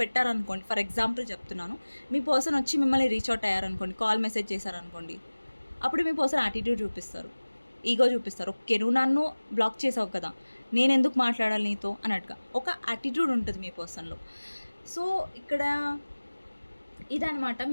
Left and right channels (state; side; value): inverted; both; correlation -1.00